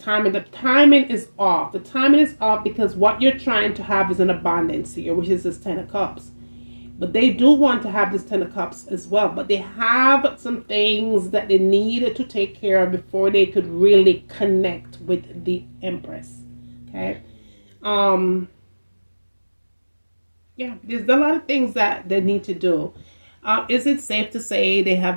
timing. The timing is off. The timing is off because what you're trying to have is an abundance here, which is this Ten of Cups. But they do want to have this Ten of Cups as well. But they have some things that they need to take care of before they could really connect with the Empress. Okay. Yeah, there's a lot of things that they need to do. Is it safe to say they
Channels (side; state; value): both; inverted; correlation -1.00